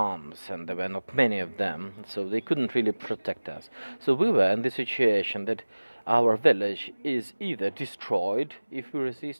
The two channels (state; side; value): inverted; both; correlation -1.00